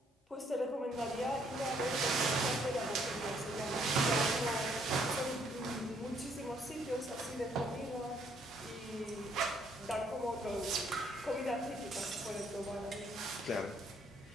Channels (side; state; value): both; normal; correlation 0.68